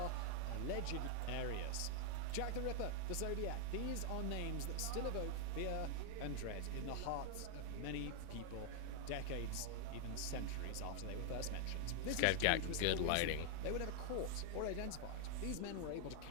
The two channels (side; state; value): both; different; correlation 0.00